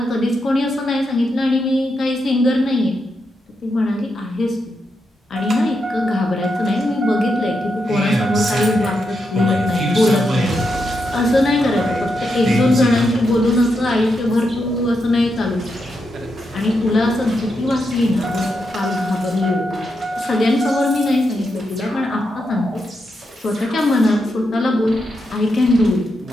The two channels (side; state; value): both; normal; correlation 0.84